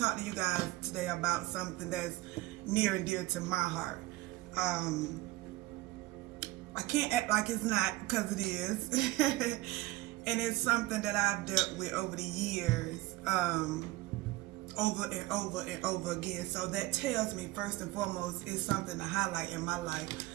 to you guys today about something that's near and dear to my heart. I can't act like it's not, because it is. And it's something that I've dealt with over the years, over and over and over again. So that tells me, first and foremost, it's something to highlight in my life.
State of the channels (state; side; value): quieter; left; 19.1 dB